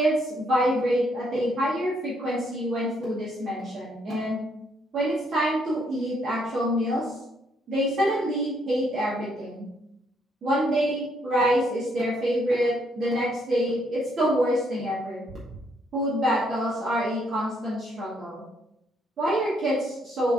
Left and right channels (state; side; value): normal; both; correlation 0.71